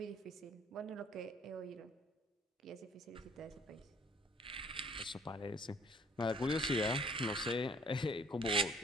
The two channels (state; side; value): normal; both; correlation 0.57